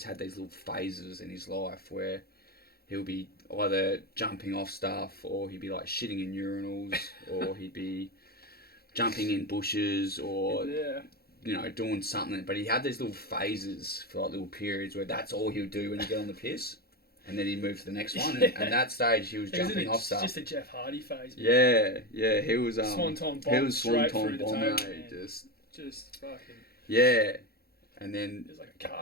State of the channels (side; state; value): right; late; 0.45 ms